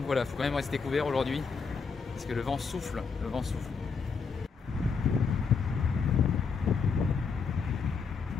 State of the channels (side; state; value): right; quieter; 5.3 dB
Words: voilà, faut quand même rester couvert aujourd'hui parce que le vent souffle,